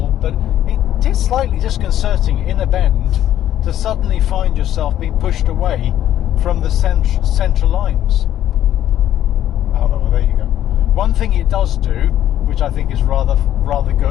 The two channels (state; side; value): quieter; right; 11.8 dB